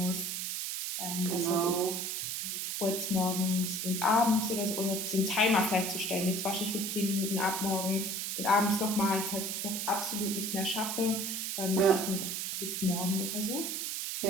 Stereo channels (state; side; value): noise; right; hiss, 2 dB below the sound